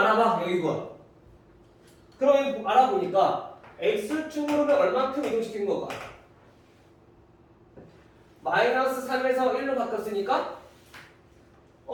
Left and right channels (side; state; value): both; identical; correlation 1.00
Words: 알아봐. 여기 이거. 그러면 알아보니까 x축으로는 얼마큼 이동시킨 건가? 마이너스 3에서 1로 바뀌었으니까